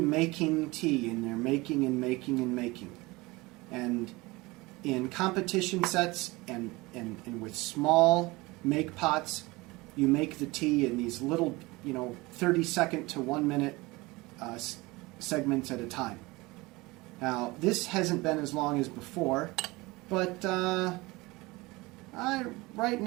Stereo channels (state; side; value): quieter; left; 22.5 dB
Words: tea, and they're making and making and making. And in competition sets and with small make pots, you make the tea in these little, 30-second to 1 minute segments at a time. Now, this hasn't been as long as before, but right